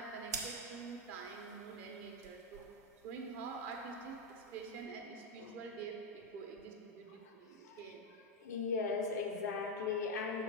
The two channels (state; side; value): normal; both; correlation 0.05